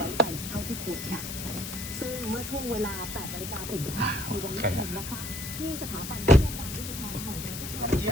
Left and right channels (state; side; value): noise; left; hiss, 7 dB below the sound